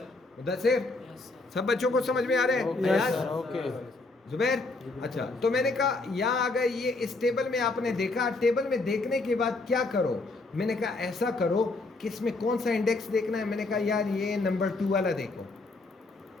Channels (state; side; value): quieter; right; 3.3 dB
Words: Mudassir, yes sir. सब बच्चों को समझ में आ रहे हैं? Yes sir. ओके। जुबैर, अच्छा तो मैंने कहा यहाँ अगर ये इस टेबल में आपने देखा, टेबल में देखने के बाद क्या करो? मैंने कहा ऐसा करो कि इसमें कौन सा इंडेक्स देखना है। मैंने कहा यार ये नंबर 2 वाला देखो।